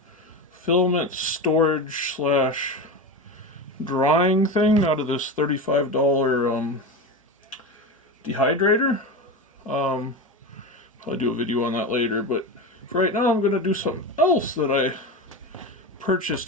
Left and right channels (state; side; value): normal; both; correlation 0.22